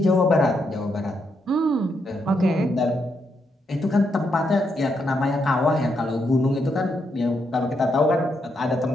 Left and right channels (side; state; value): both; normal; correlation 0.79